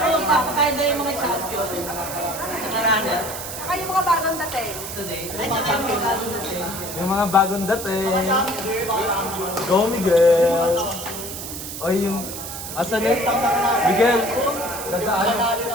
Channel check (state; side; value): noise; right; hiss, 8 dB below the sound